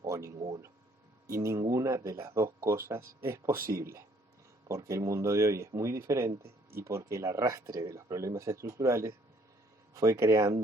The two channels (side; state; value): both; normal; correlation 0.63